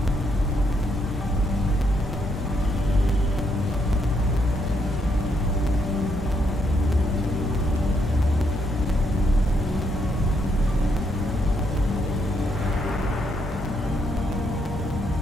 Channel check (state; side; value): normal; both; correlation 0.75